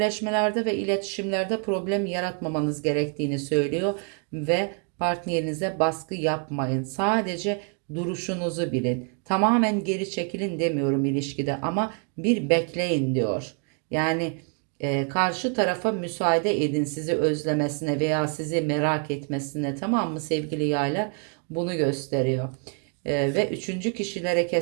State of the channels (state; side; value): quieter; left; 39.2 dB